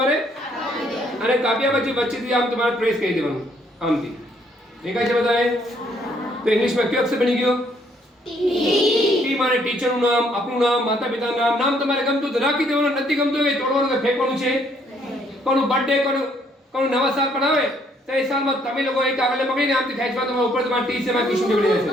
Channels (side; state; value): both; normal; correlation 0.67